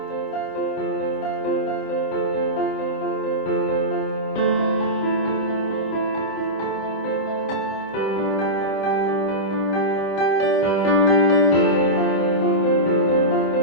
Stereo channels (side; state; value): right; late; 26 ms